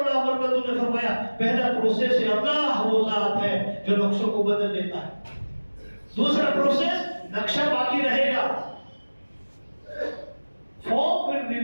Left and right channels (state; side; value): inverted; both; correlation -1.00